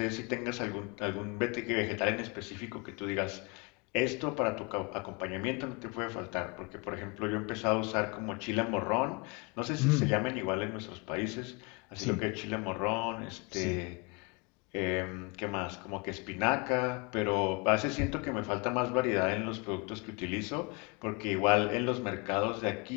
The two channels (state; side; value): quieter; right; 30.4 dB